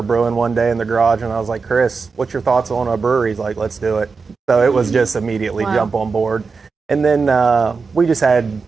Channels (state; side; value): quieter; left; 4.8 dB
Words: brewing one day in the garage, and I was like, Chris, what's your thoughts on a brewery? He's like, let's do it. So it was just immediately jump on board. And then